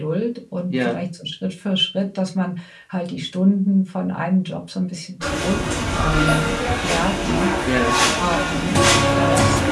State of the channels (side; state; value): both; identical; correlation 1.00